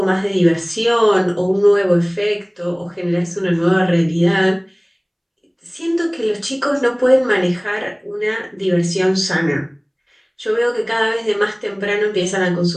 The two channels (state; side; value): identical; both; correlation 1.00